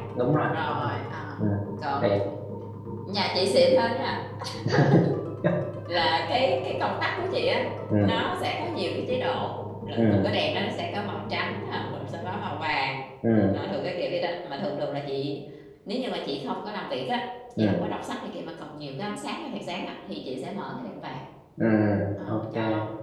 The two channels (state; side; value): identical; both; correlation 1.00